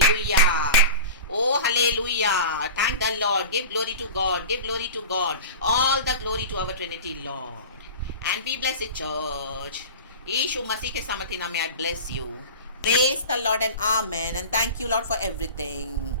Oh hallelujah, thank the Lord, give glory to God, give glory to God, all the glory to our Trinity Lord, and be blessed church. यीशु मसीह के सामर्थ्य नाम में I bless you. Praise the Lord and Amen and thank you Lord for everything.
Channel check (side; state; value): both; inverted; correlation -0.33